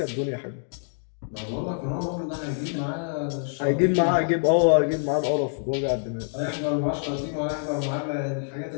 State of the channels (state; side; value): silent; right; 61 dB below the other